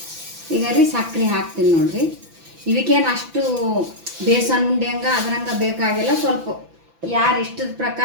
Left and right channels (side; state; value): left; late; 6.0 ms